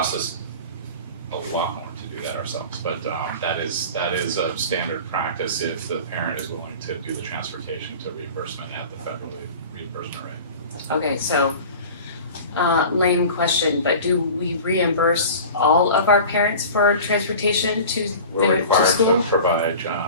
us a lot more to do that ourselves, but that is a standard practice if the parent is willing to do the transportation to reimbursement at the federal reimbursement rate. Okay, so, lame question, but do we reimburse all of our parents for transportation to We're to required school? to provide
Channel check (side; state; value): both; inverted; correlation -0.38